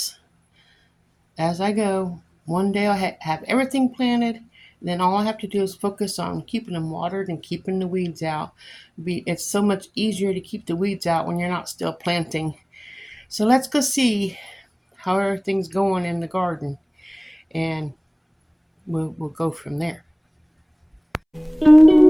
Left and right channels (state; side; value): identical; both; correlation 1.00